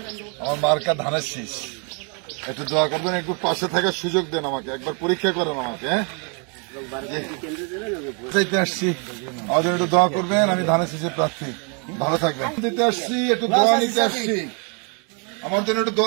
আমার মার্কা ধানের শীষ, একটু দোয়া করবেন, একটু পাশে থাকার সুযোগ দেন আমাকে, একবার পরীক্ষা করেন আমাকে। হ্যাঁ চাইতে আসছি, আমার জন্য একটু দোয়া করবেন, আমি ধানের শীষের প্রার্থী। ভালো থাকবেন। দিতে আসছি, একটু দোয়া নিতে আসছি, আমার জন্য একটু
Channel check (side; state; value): left; quieter; 37.5 dB